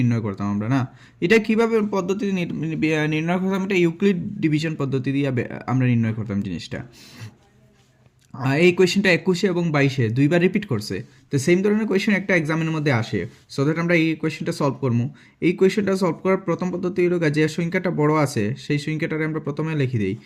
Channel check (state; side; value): identical; both; correlation 1.00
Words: করতাম আমরা না। এটা কীভাবে পদ্ধতি নির্ণয় করতাম, এটা ইউক্লিড ডিভিশন পদ্ধতি দিয়ে আমরা নির্ণয় করতাম জিনিসটা। এই কোয়েশ্চেনটা 21 এবং 22-এ দুইবার রিপিট করছে, তো সেম ধরনের কোয়েশ্চেন একটা এক্সামের মধ্যে আসে। সো দ্যাট আমরা এই কোয়েশ্চেনটা সলভ করবো। এই কোয়েশ্চেনটা সলভ করার প্রথম পদ্ধতি হলো যে সংখ্যাটা বড় আছে সেই সংখ্যাটারে আমরা প্রথমে লিখে দিই।